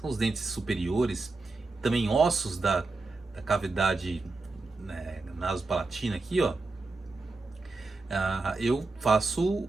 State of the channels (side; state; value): left; quieter; 3.5 dB